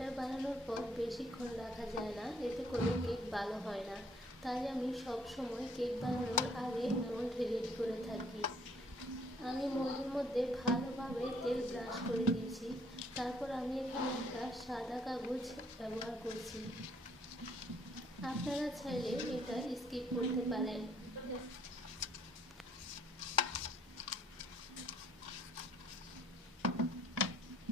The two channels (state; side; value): normal; both; correlation 0.63